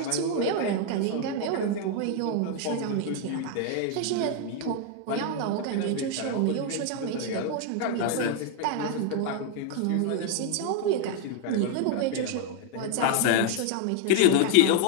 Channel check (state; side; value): different; both; correlation 0.00